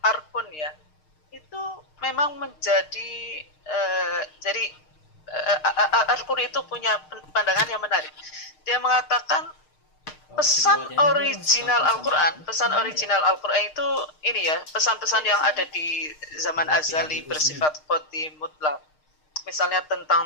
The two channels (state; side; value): late; right; 6.5 ms